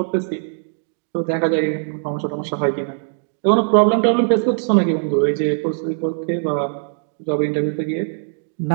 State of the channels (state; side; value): silent; left; digital silence